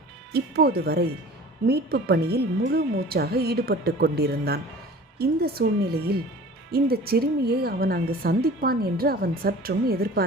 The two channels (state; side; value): normal; both; correlation 0.43